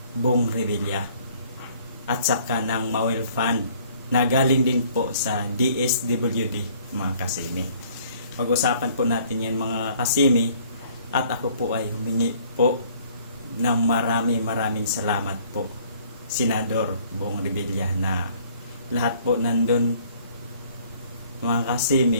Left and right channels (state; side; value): inverted; both; correlation -0.58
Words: Bong Revilla at saka ng Mawel Fund na galing din po sa DSWD mga kasimi. Pag-usapan po natin yan mga kasimi at ako po ay humingi po ng maraming salamat po Senador Bong Revilla na lahat po nandun mga